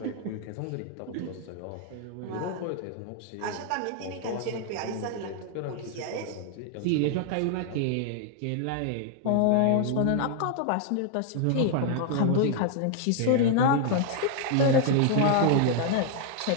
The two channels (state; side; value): different; both; correlation 0.00